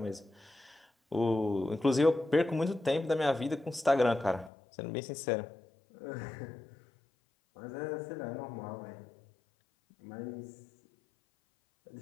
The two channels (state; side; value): drops out; right; at 4.5 s